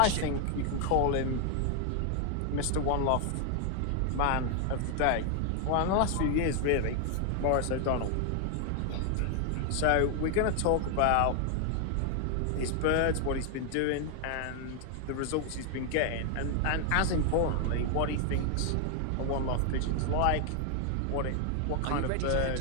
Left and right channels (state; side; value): different; both; correlation 0.00